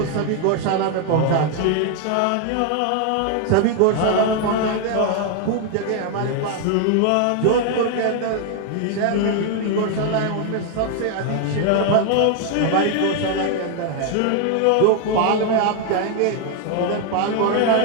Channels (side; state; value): both; different; correlation 0.00